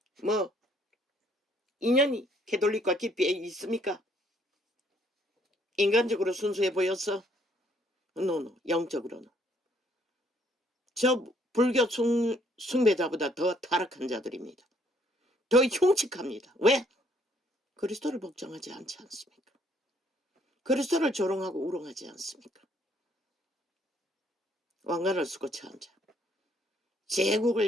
뭐 인연이 캐톨릭과 깊이 있습니까? 인간적으로 순수해 보였어? 노 영적으로는 저 불교 숭배자보다 더 타락한 자들입니다. 더 흉측합니다. 왜? 그리스도를 복종하지 않지 않습니까? 그리스도를 조롱하고 우롱하지 않습니까? 왕관을 쓰고 처한 자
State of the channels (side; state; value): both; normal; correlation 0.66